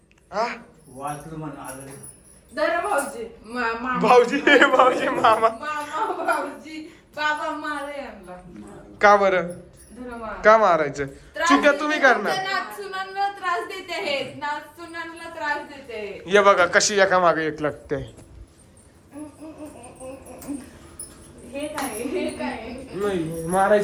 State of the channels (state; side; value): identical; both; correlation 1.00